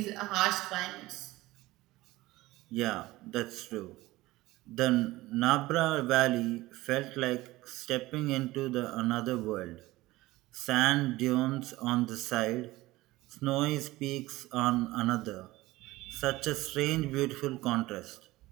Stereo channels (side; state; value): left; quieter; 18.6 dB